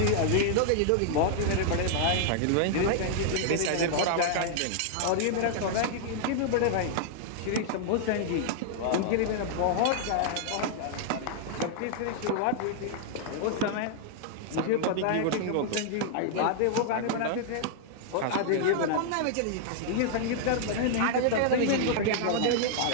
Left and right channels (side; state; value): both; different; correlation -0.01